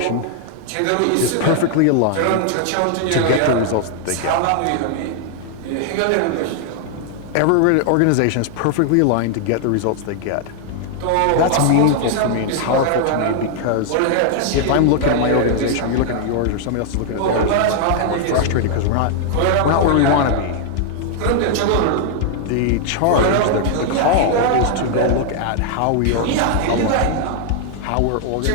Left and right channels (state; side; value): different; both; correlation 0.00